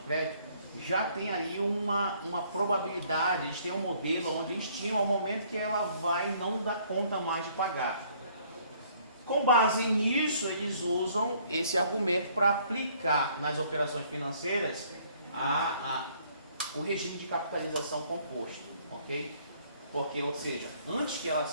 crédito, já tem ali uma probabilidade, eles têm um modelo onde estimam o momento que ela vai não dar conta mais de pagar. Com base nisso, eles usam esse argumento para aplicar nas operações financeiras o regime de capitalização composto, ok? Porque, ou seja, antes que ela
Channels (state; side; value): inverted; both; correlation -0.62